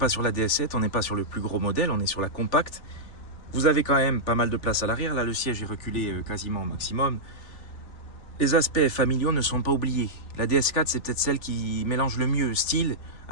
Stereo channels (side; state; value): right; late; 3.5 ms